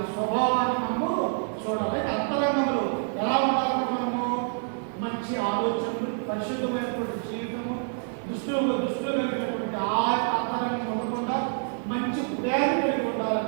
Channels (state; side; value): silent; left; 60 dB below the other